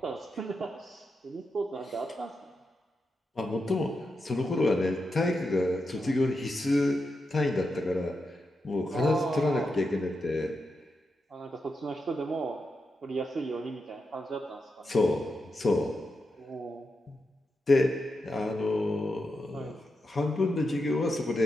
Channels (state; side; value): normal; both; correlation 0.87